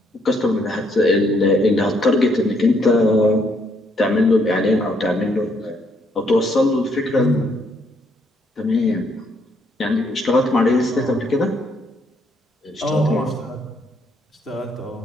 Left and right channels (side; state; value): both; normal; correlation 0.71